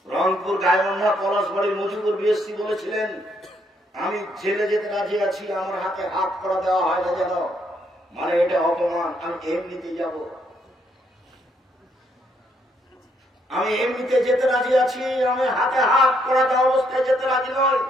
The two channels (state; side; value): normal; both; correlation 0.72